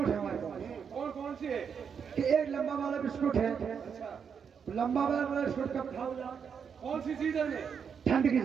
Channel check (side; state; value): left; quieter; 6.9 dB